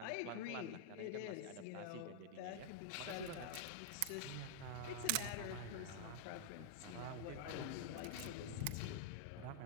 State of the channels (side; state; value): both; different; correlation -0.01